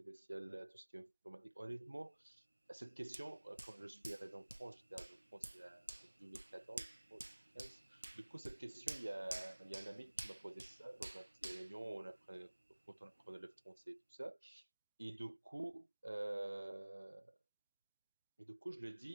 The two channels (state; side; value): inverted; both; correlation -1.00